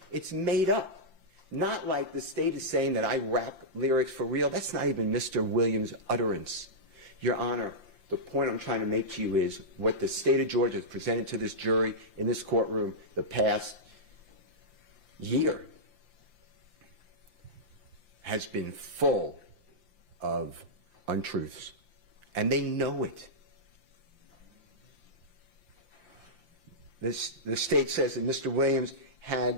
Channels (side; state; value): left; late; 5.8 ms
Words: It's made up. Not like the state is saying that I rap lyrics for real. That's not even Mr. Williams' utterance. Your Honor, The point I'm trying to make to you is what the state of Georgia has presented to this jury in this courtroom the past year has been full of untruths, and they know it. The state says that Mr. Williams